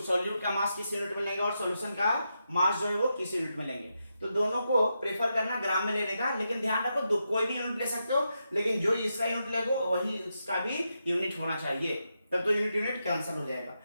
सॉल्यूट का मास किस यूनिट में लेंगे और सॉल्यूशन का मास जो है वो किस यूनिट में लेंगे। तो दोनों को प्रेफर करना ग्राम में लेने का, लेकिन ध्यान रखो कोई भी यूनिट ले सकते हो, लेकिन जो इसका यूनिट लेगो वही इसका भी यूनिट होना चाहिए, तब तो यूनिट यूनिट कैंसिल हो जाएगा।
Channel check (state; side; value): inverted; both; correlation -0.85